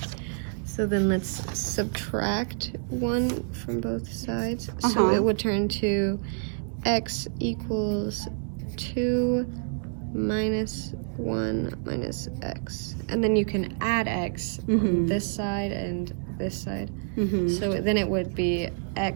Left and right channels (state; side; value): silent; left; digital silence